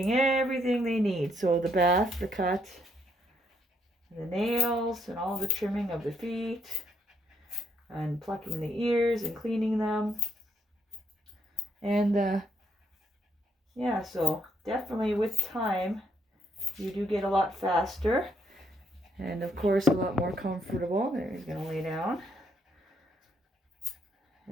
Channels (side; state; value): both; normal; correlation 0.72